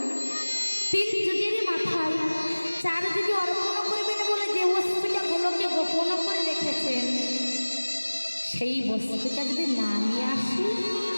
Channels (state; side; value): inverted; both; correlation -1.00